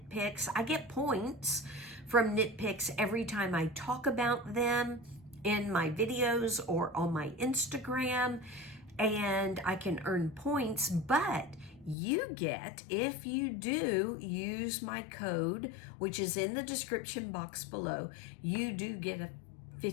Picks. I get points from Knit Picks every time I talk about them in my videos or on my Instagram, and I can earn points, but you get, if you do use my code, which is in the description box below, you do get a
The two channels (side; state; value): right; drops out; at 12.0 s